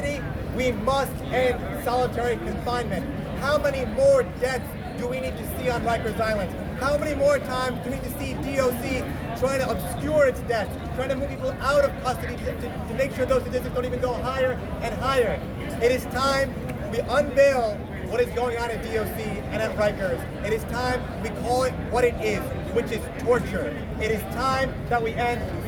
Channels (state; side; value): identical; both; correlation 1.00